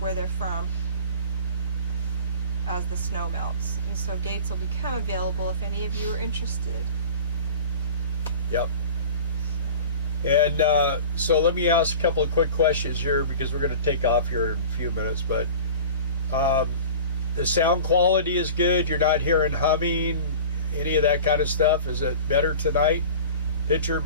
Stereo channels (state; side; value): inverted; both; correlation -0.39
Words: they're from as the snow melts. And so gates will become available if any of you are interested. Yep. And so let me ask a couple of quick questions here because we're going to take off here in a few minutes. But the sound quality is good. You're not hearing humming, any of that kind of stuff. Is it better tonight? Picture